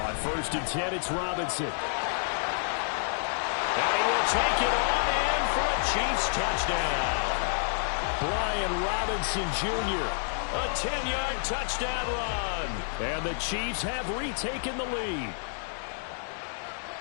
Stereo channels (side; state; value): right; silent; digital silence